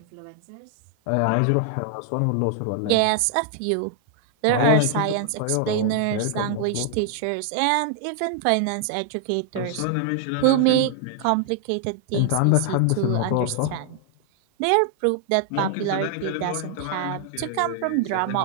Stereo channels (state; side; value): different; both; correlation 0.00